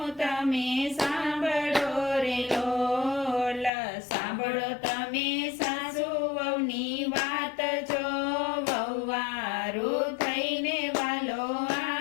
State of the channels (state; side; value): drops out; right; at 3.7 s